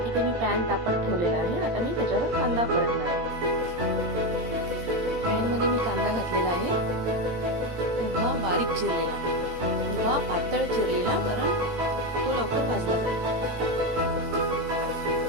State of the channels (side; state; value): left; late; 17 ms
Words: इथे मी पॅन तापत ठेवलेला आहे। आता मी त्याच्यावर कांदा परतणार आहे। पॅन मध्ये मी कांदा घातलेला आहे, उभा बारीक चिरलेला, उभा पातळ चिरलेला, कारण तो लवकर भाजला जाईल।